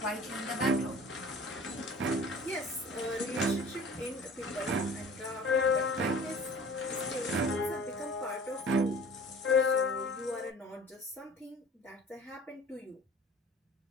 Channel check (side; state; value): both; normal; correlation 0.45